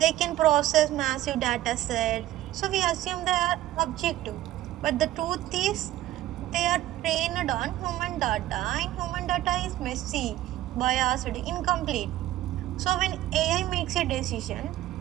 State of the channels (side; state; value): left; quieter; 14.4 dB